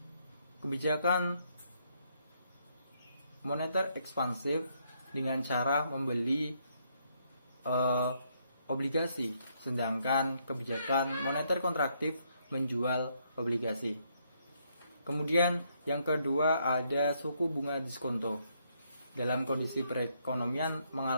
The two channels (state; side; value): inverted; both; correlation -0.73